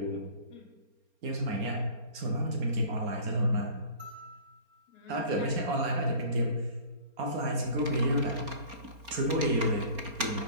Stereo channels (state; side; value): late; left; 4.3 ms